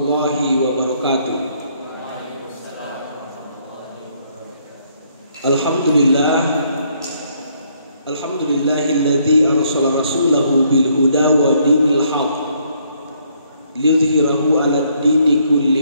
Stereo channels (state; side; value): inverted; both; correlation -0.69